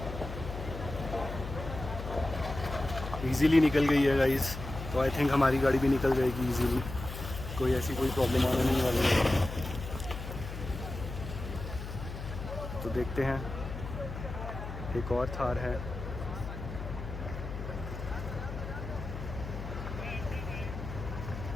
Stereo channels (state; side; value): noise; left; hum, 8 dB below the sound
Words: इजीली निकल गई है गाइस, तो आई थिंक हमारी गाड़ी भी निकल जाएगी इजीली, कोई ऐसी कोई प्रॉब्लम आने नहीं वाली है। तो देखते हैं, एक और थार है।